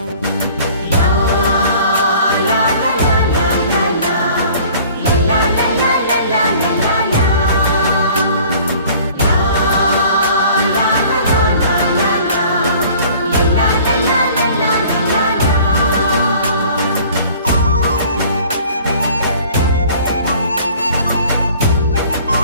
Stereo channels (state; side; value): inverted; both; correlation -0.50